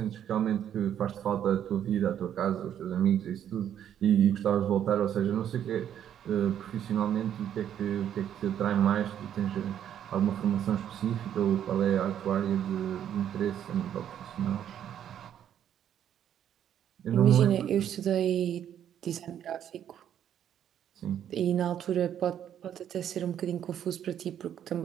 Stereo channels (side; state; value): left; quieter; 9.9 dB